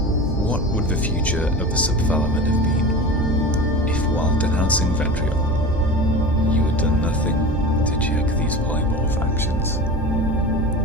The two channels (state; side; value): normal; both; correlation 0.31